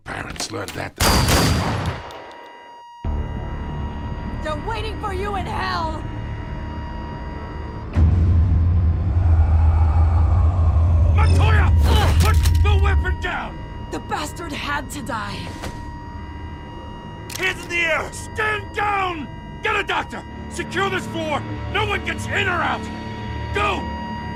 learned that. They're waiting for you in hell! Montoya! Put the weapon down! The bastard had to die. Hands in the air! Stand down! Get a doctor! Secure this floor! No one gets in or out! Go!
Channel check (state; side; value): identical; both; correlation 1.00